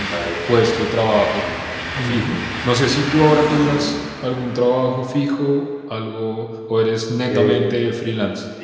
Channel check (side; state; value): both; identical; correlation 1.00